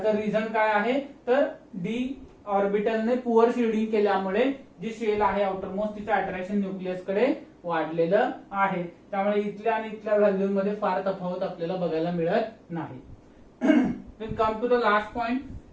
रिझन काय आहे, तर डी ऑर्बिटलने पुअर शिल्डिंग केल्यामुळे जी शेल आहे आउटर मोस्ट तिचं अट्रॅक्शन न्यूक्लियस कडे वाढलेलं आहे. त्यामुळे इथल्या आणि इथल्या व्हॅल्यू मध्ये फार तफावत आपल्याला बघायला मिळत नाही. Come to the last point,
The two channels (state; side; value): identical; both; correlation 1.00